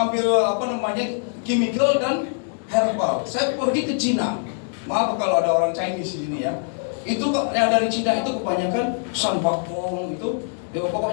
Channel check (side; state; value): right; silent; digital silence